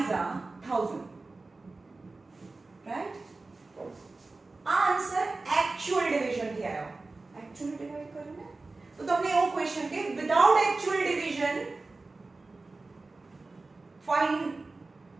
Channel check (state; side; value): quieter; left; 3.5 dB